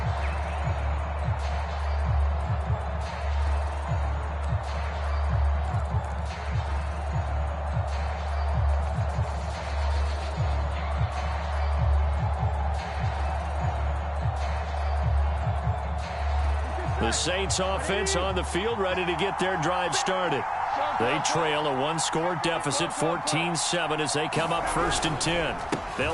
The Saints offense on the field, ready to get their drive started. They trail a one-score deficit, 14-7, as they come up 1st and 10.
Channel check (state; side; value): identical; both; correlation 1.00